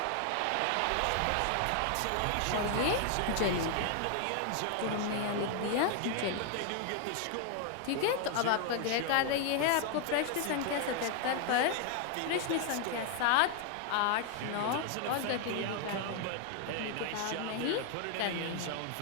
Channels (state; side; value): different; both; correlation 0.00